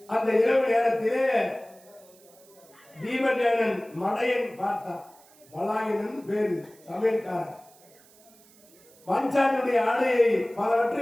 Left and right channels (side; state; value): right; noise; hiss, 27 dB below the sound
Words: அந்த இரவு நேரத்திலே பீமசேனன் மடையன் பார்த்தான். பலாயனன் பேரு, சமையல்காரன். பாஞ்சாலியுடைய ஆடையை பலவற்றை